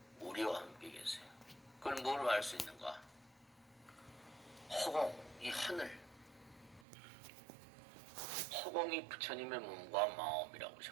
우리와 함께 계세요. 그걸 뭘 알 수 있는가? 허공, 이 하늘. 허공이 부처님의 몸과 마음이라고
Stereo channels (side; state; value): left; drops out; at 6.9 s